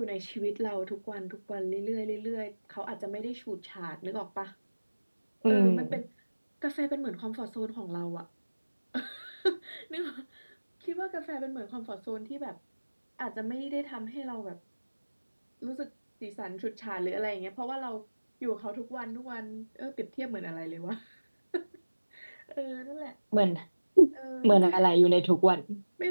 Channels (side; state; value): both; inverted; correlation -1.00